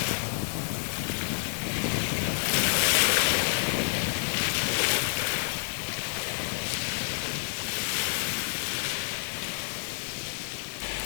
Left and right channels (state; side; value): silent; right; 59 dB below the other